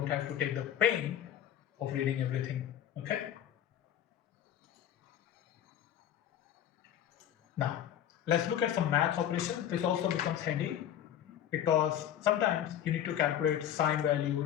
have to take the pain of reading everything. Okay. Now, let's look at some math operations. This also becomes handy because sometimes you need to calculate sine value,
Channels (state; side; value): quieter; right; 10.4 dB